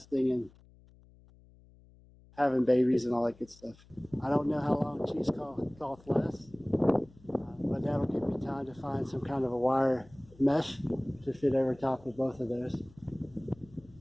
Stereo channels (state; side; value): noise; left; hum, 26 dB below the sound